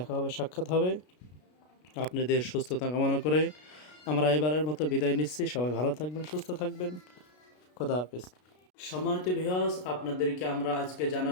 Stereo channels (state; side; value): late; right; 33 ms